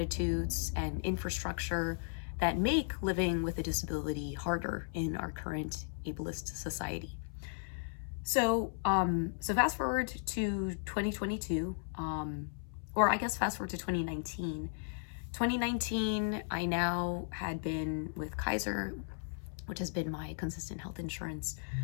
and infrastructure that make living with a disability harder in our current ableist society. So fast forward to 2022, or I guess fast forward to 2019. 2019, I now had been with Kaiser, which has been my consistent health insurance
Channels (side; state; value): right; silent; 54 dB below the other